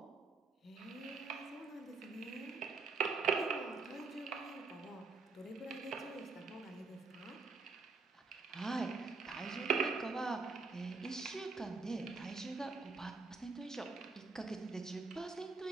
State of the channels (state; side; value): quieter; left; 4.3 dB